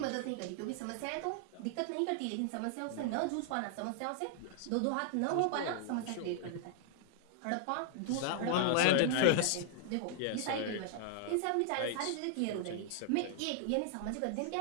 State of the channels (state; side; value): different; both; correlation -0.01